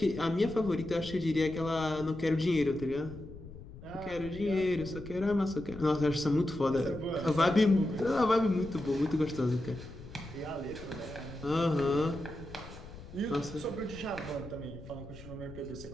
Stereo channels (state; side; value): noise; left; rumble, 15 dB below the sound